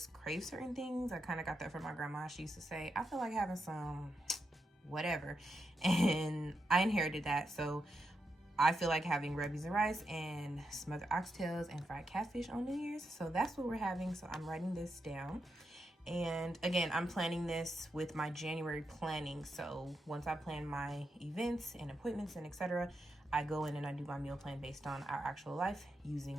crave certain things. I kind of got that from my grandma. She used to say, I feel like having some whatever, and I inherited that. So I feel like having red beans and rice and smothered oxtails and fried catfish on New Year's. So that's what we're having. So I'm writing this down. And again, I'm planning this with my January planning. So once I plan my events and appointments and etc., I go in and I do my meal plan based on our actual life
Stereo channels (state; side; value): normal; both; correlation 0.85